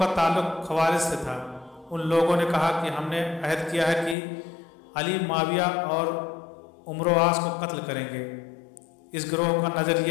ताल्लुक खवारिज से था। उन लोगों ने कहा कि हमने अहद किया है कि अली, माविया और उमरो आस को कत्ल करेंगे। इस गिरोह का नज़र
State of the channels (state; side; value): drops out; right; at 4.2 s